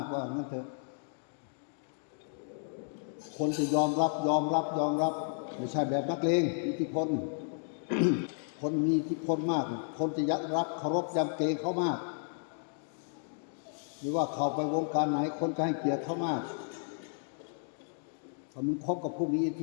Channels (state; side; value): silent; right; digital silence